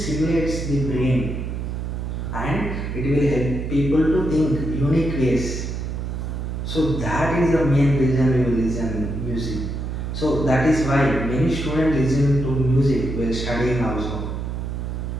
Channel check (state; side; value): noise; right; hum, 4 dB below the sound